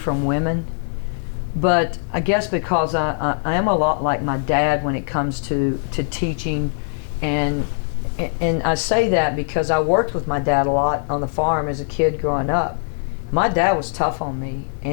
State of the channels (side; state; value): right; silent; digital silence